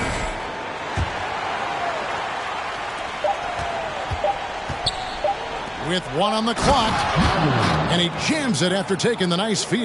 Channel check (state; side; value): identical; both; correlation 1.00